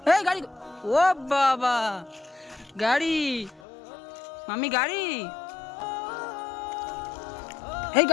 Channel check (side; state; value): right; drops out; at 3.6 s